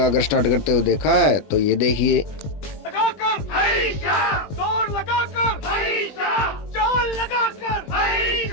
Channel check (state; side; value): late; right; 20 ms